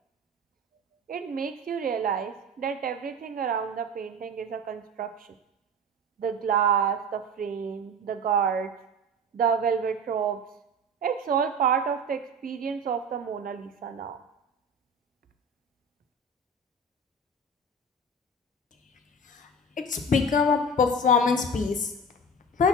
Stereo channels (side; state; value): both; normal; correlation 0.32